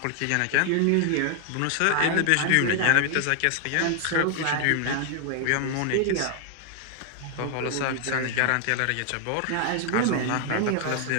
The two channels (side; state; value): both; different; correlation 0.00